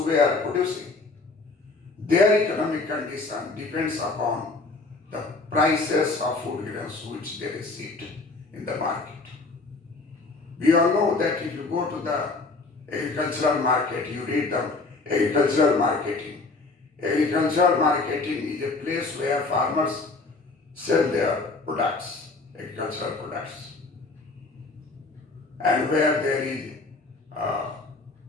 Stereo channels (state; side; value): quieter; right; 3.6 dB